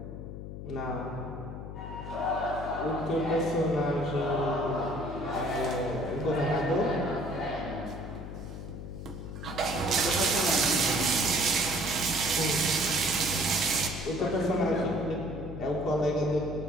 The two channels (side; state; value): left; noise; hum, 9 dB below the sound